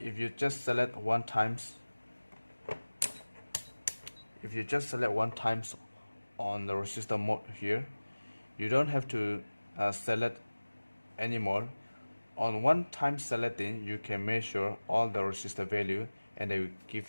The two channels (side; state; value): both; inverted; correlation -1.00